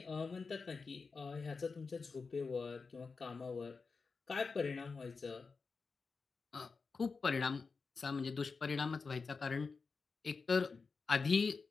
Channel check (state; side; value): quieter; right; 4.6 dB